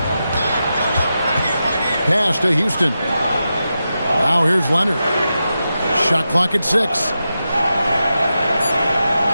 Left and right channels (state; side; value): inverted; both; correlation -0.90